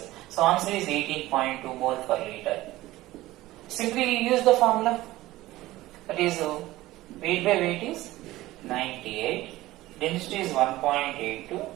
So answer is 18.2 mole per liter. Simply use the formula. That is weight by weight is 98. Density is 1.82.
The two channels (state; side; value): quieter; left; 17.1 dB